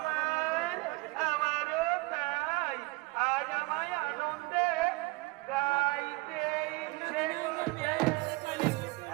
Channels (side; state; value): left; quieter; 24.5 dB